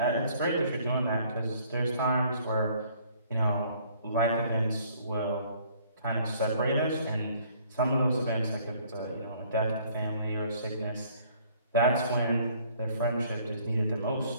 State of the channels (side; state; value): both; inverted; correlation -0.60